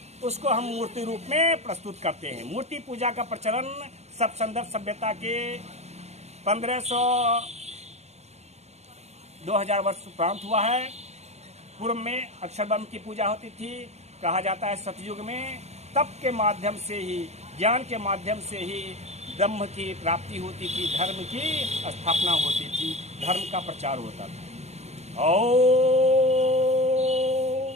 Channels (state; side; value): late; left; 0.32 ms